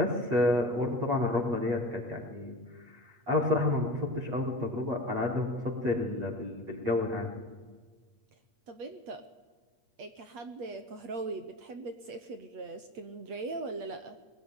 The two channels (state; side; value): late; left; 8.5 ms